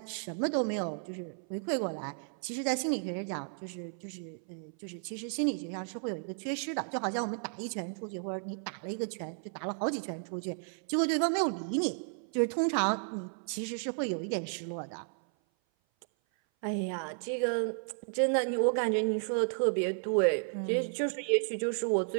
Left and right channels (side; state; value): left; silent; 56 dB below the other